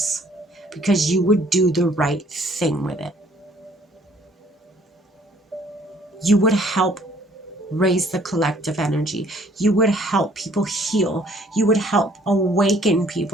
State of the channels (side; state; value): both; normal; correlation 0.60